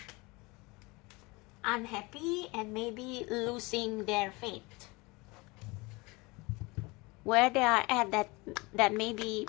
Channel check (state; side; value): quieter; right; 25.0 dB